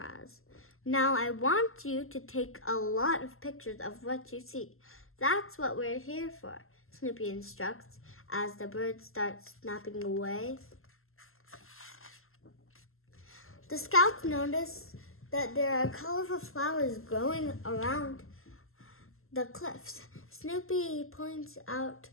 Now I want you to take a lot of pictures of what you see. That's what we're here for, Snoopy instructs as the birds start snapping away. The scouts notice that there are colorful flowers growing around the cliffs. Snoopy points out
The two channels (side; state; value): right; late; 0.62 ms